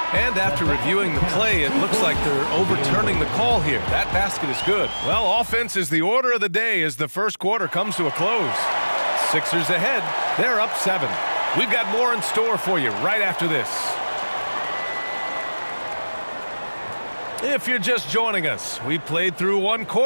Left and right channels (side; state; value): both; inverted; correlation -1.00